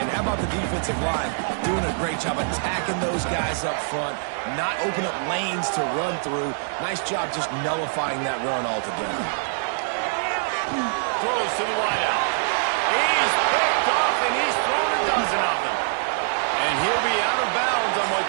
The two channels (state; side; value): silent; left; 62 dB below the other